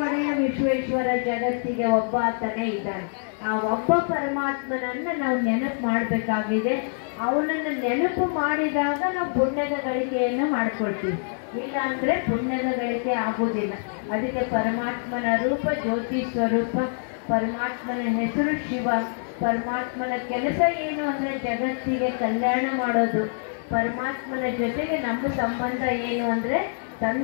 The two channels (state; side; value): silent; right; digital silence